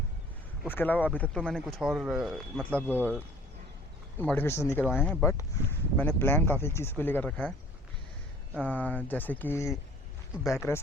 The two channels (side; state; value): both; normal; correlation 0.52